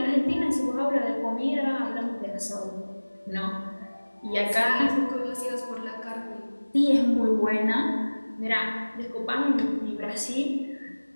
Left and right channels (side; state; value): both; inverted; correlation -1.00